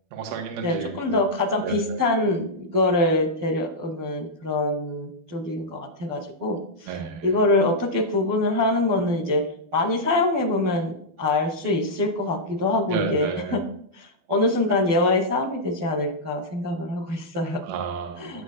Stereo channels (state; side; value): late; left; 12 ms